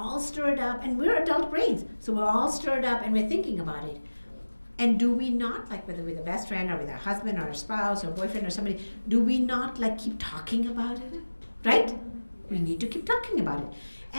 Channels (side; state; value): both; inverted; correlation -1.00